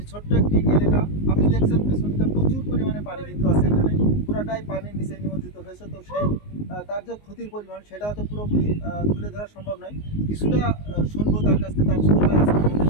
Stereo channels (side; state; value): right; late; 19 ms